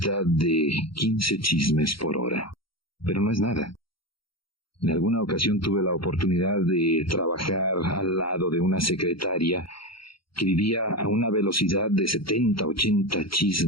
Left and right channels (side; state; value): right; late; 0.74 ms